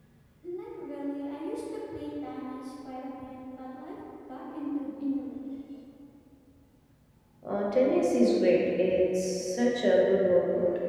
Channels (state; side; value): identical; both; correlation 1.00